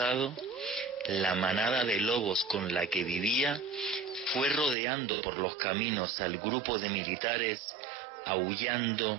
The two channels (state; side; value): drops out; left; at 4.8 s